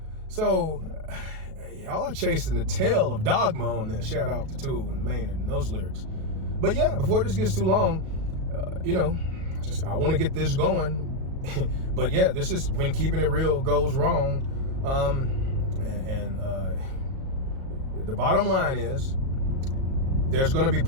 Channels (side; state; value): left; late; 37 ms